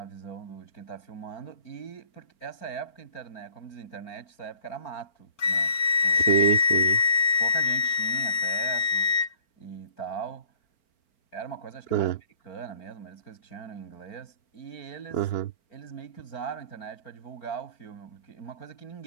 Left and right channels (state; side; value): late; right; 4.4 ms